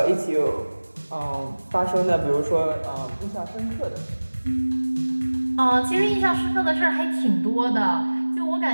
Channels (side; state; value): both; inverted; correlation -1.00